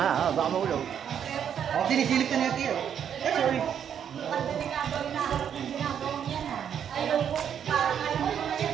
Baka mahulog. Oh, sinisilip ka niya, Tiyo. Sorry.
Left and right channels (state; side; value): quieter; left; 8.6 dB